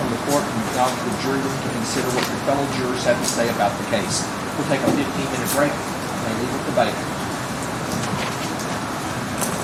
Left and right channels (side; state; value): both; identical; correlation 1.00